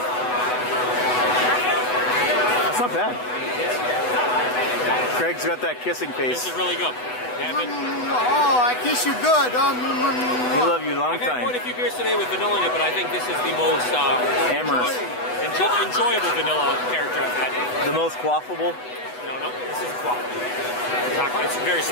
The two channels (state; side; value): late; right; 8.1 ms